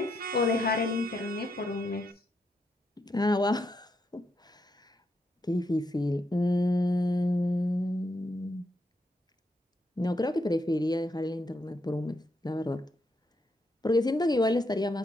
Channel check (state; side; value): normal; both; correlation 0.80